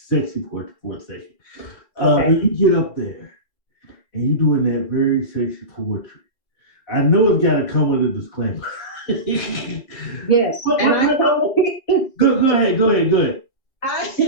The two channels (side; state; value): right; late; 4.0 ms